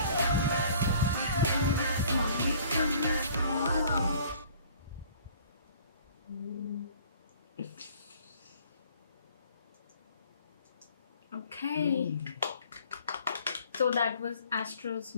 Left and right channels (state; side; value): inverted; both; correlation -0.53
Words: Okay. So that was Astro's